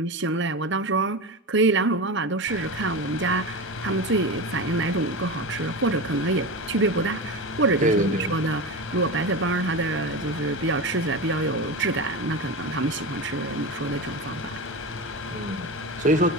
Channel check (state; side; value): normal; both; correlation 0.23